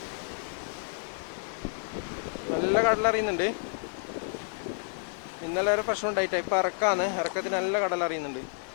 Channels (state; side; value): silent; right; digital silence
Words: നല്ല കടലറിയുന്നുണ്ട്. ഇന്നലെ ഒരു പ്രശ്നം ഉണ്ടായിട്ടാ. ഇപ്പം ഇറക്കത്തിന് നല്ല കടലറിയുന്നുണ്ട്.